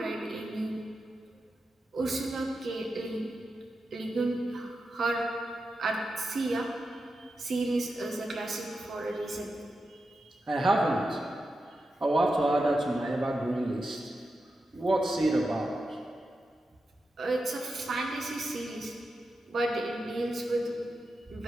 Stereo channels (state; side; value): normal; both; correlation 0.89